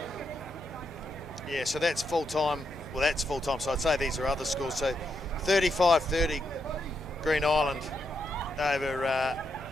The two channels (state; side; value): noise; left; hum, 28 dB below the sound